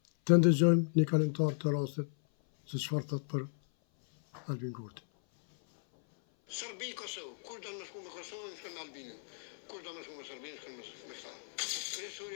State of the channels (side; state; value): right; silent; 54 dB below the other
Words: të ndëgjojmë një kalimtar të rastit se çfarë thot për Albin Kurti. Serbi, Kosovë, kur do më shku me Kosovën, shkën me Albinin. Kur do më shku me Serbinë, shkën me këta.